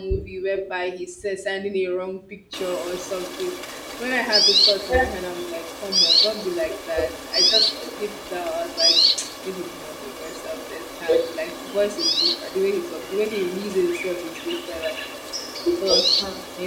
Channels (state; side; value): identical; both; correlation 1.00